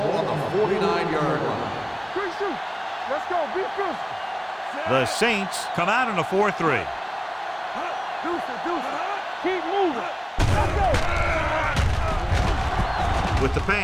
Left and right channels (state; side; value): identical; both; correlation 1.00